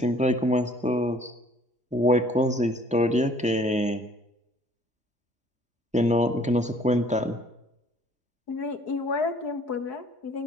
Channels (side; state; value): both; normal; correlation 0.57